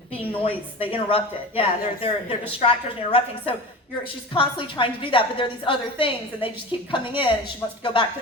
being noise. They interrupt it. Yeah, they're distractors and interrupting. So she's constantly trying to do that, but there are these other things, and they just keep coming in, and she wants to go back to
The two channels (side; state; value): both; normal; correlation 0.31